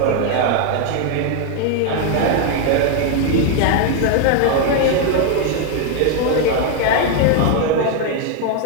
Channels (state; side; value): different; both; correlation 0.01